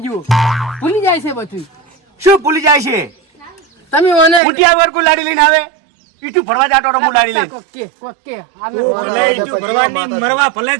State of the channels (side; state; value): left; drops out; at 4.4 s